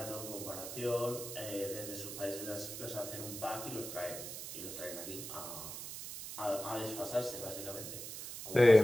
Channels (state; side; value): noise; right; hiss, 8 dB below the sound